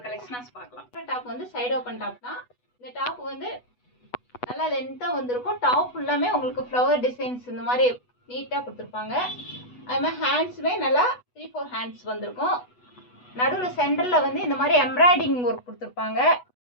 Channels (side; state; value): right; late; 8.1 ms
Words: கலெக்ஷனாஸ் பார்க்கலாம். டாப் வந்து சைடு ஓப்பன் டாப் தான். இந்த டாப் வந்து நல்லா லென்த்தாக வந்திருக்கும். டாப் ஃபுல்லாமே உங்களுக்கு ஃப்ளவர் டிசைன்ஸ் இந்த மாதிரி நீட்டாக கொடுத்துருப்பாங்க. அது மாதிரி ஹேண்ட்ஸுமே நல்லா 3-4 ஹேண்ட்ஸ் வந்திருக்கும். நடுவில் சென்டரில் வந்து இந்த மாதிரி எம்ப்ராய்டிங் ஒர்க் கொடுத்துருப்பாங்க.